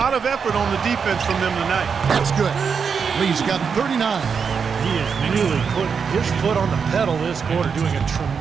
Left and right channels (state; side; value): quieter; left; 6.1 dB